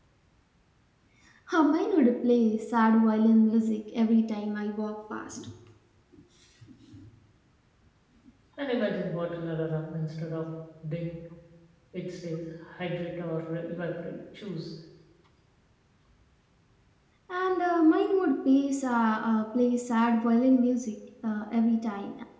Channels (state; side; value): identical; both; correlation 1.00